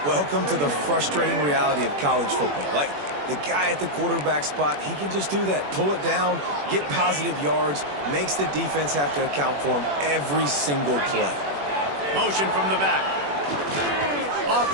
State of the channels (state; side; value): late; left; 21 ms